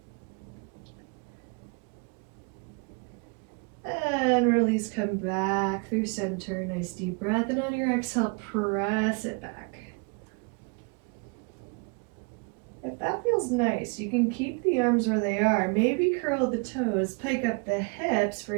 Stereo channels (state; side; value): quieter; left; 33.1 dB